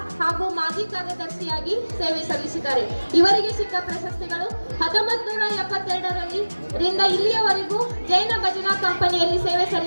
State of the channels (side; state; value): both; inverted; correlation -1.00